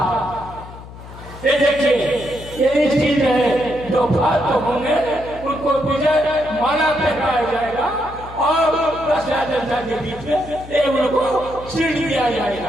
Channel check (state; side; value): noise; left; hum, 15 dB below the sound